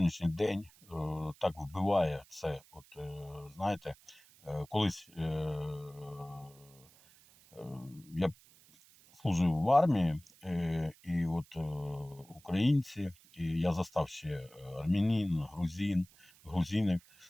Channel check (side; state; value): right; noise; hiss, 26 dB below the sound